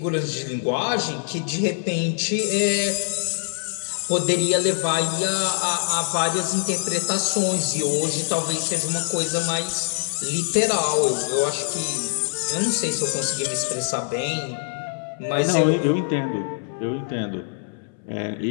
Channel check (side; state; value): right; silent; 62 dB below the other